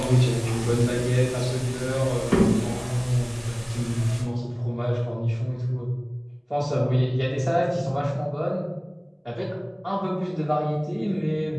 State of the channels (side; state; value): both; identical; correlation 1.00